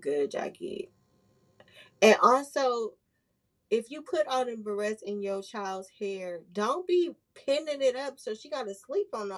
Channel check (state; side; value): identical; both; correlation 1.00